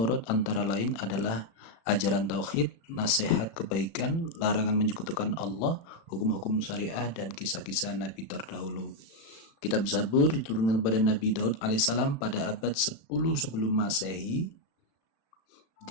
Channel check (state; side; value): late; right; 36 ms